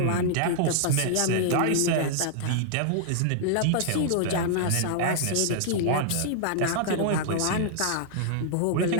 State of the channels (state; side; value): different; both; correlation -0.01